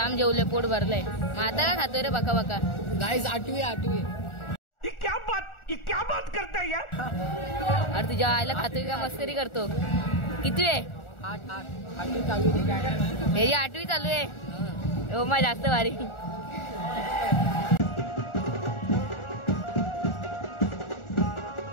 जेवले, पोट भरलंय। मग आता का खातोय रे बका बका। गाइस आठवी ये क्या बात करता है यार। अरे तुझ्या आईला खातोय का मस्करी करतो। किती आहे? 8 चालू आहे। 8वी चालू आहे। ओमा जास्त भारी।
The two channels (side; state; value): right; late; 1.4 ms